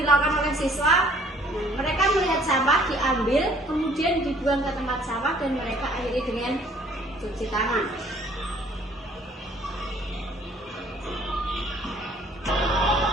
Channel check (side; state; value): both; normal; correlation 0.58